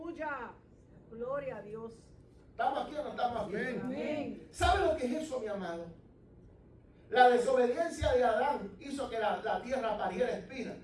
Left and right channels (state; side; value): identical; both; correlation 1.00